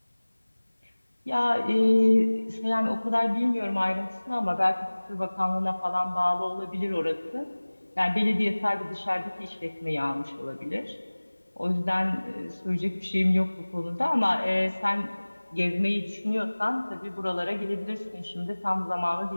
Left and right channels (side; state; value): both; inverted; correlation -1.00